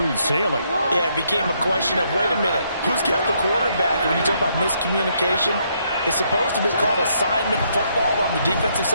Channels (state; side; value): inverted; both; correlation -0.73